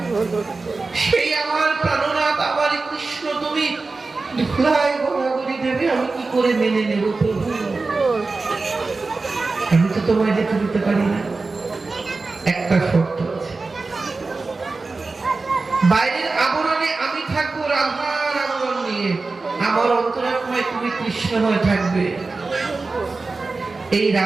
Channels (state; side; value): quieter; left; 3.8 dB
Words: সেই আমার প্রাণনাথ, আমার কৃষ্ণ, তুমি ধুলায় গড়াগড়ি দেবে, আমি কি করে মেনে নেব প্রভু? আমি তো তোমায় যেতে দিতে পারি না। একটা শর্ত আছে, বাইরের আবরণে আমি থাকবো রাধার আবরণ নিয়ে, আমার অন্তরাত্মায় তুমি কৃষ্ণ হয়ে থাকবে। এই